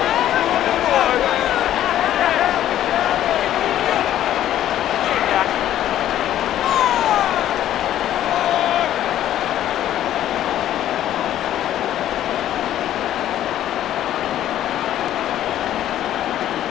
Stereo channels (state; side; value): quieter; right; 12.1 dB